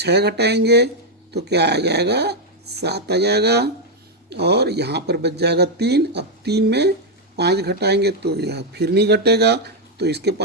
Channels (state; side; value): normal; both; correlation 0.01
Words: घटाएंगे तो क्या आ जाएगा, 7 आ जाएगा। और यहाँ पर बच जाएगा 3। अब 3 में 5 घटाएंगे तो यह फिर नहीं घटेगा, तो इसके